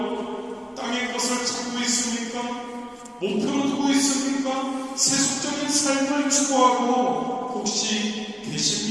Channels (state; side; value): identical; both; correlation 1.00